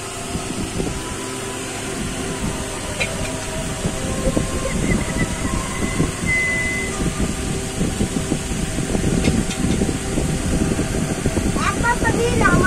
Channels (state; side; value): identical; both; correlation 1.00